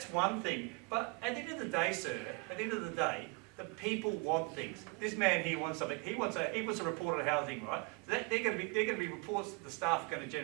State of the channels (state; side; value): quieter; left; 30.8 dB